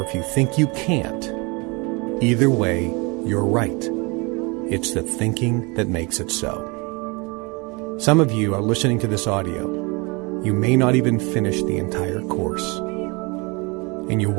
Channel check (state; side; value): quieter; left; 28.5 dB